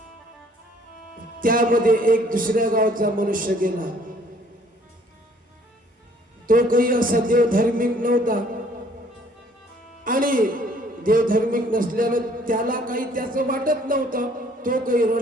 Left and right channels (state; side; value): normal; both; correlation 0.60